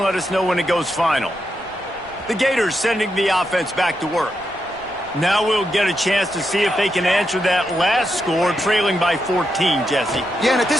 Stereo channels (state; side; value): noise; right; rumble, 28 dB below the sound